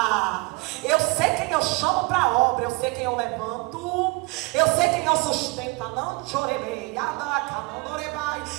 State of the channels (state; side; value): quieter; left; 27.2 dB